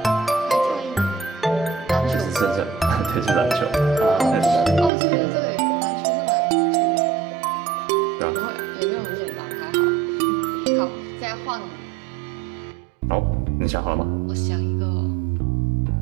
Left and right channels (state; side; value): drops out; left; at 4.9 s